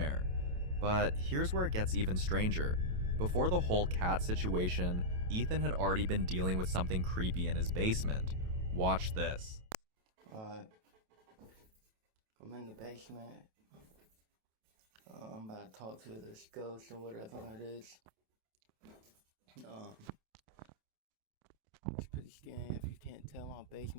But here's where it gets even stranger. Before the whole cat situation, Ethan had already been dealing with something creepy in his basement. Watch this. I'm in the basement. I'm about to talk to this ghost or whatever it is. It's pretty scary. If you can't tell, my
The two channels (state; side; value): late; left; 28 ms